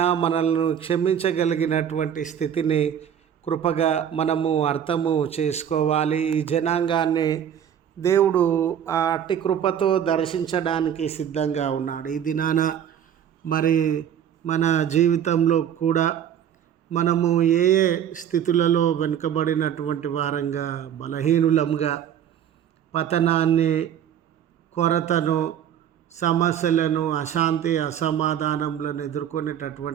మనల్ని క్షమించగలిగినటువంటి స్థితిని కృపగా మనము అర్థము చేసుకోవాలి. ఈ జనాంగాన్ని దేవుడు ఆ అట్టి కృపతో దర్శించడానికి సిద్ధంగా ఉన్నాడు. ఈ దినాన మరి మన జీవితంలో కూడా మనము ఏ ఏ స్థితులలో వెనుకబడినటువంటి వారంగా, బలహీనులంగా, పతనాన్ని, కొరతను, సమస్యలను, అశాంతి, అసమాధానములను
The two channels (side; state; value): left; quieter; 9.2 dB